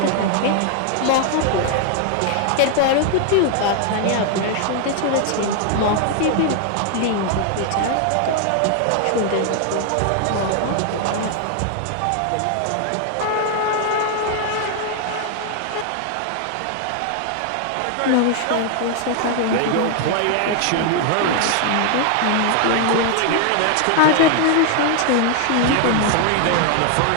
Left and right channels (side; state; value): both; different; correlation 0.00